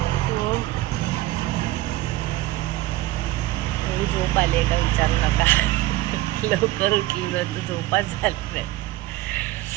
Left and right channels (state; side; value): quieter; left; 17.0 dB